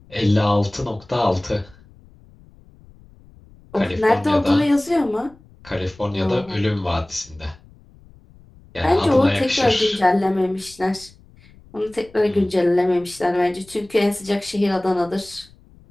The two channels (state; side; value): noise; left; rumble, 26 dB below the sound